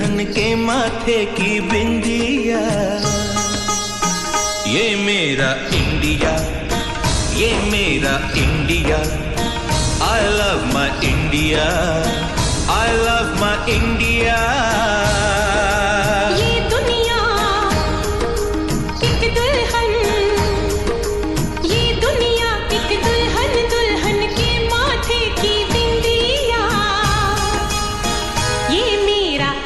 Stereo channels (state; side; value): identical; both; correlation 1.00